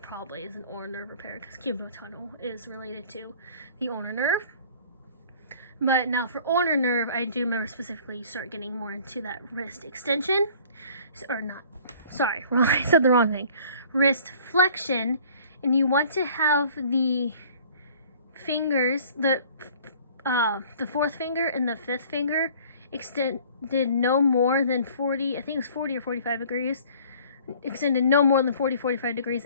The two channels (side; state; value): both; inverted; correlation -0.51